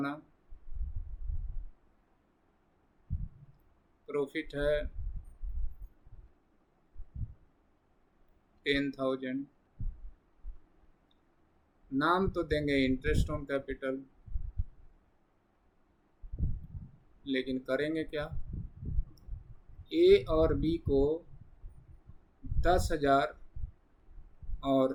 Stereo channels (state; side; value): identical; both; correlation 1.00